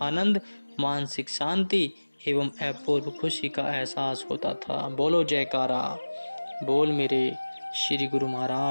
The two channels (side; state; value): both; inverted; correlation -1.00